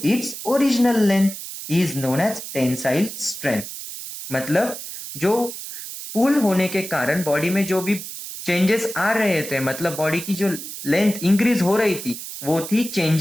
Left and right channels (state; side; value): noise; right; hiss, 10 dB below the sound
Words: its original length is known as tensile strain. मतलब जो पुल होने के कारण बॉडी में जो भी चेंजेस आ रहे थे, मतलब बॉडी की जो लेंथ इंक्रीज हो रही थी, वो थी